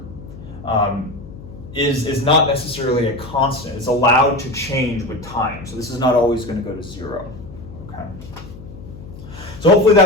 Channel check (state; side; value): noise; left; hum, 15 dB below the sound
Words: is not necessarily a constant. It's allowed to change with time. So this is not always going to go to 0. Okay. So hopefully